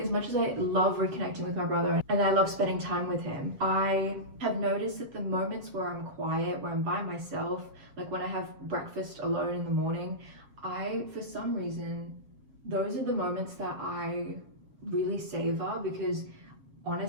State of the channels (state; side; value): late; left; 7.2 ms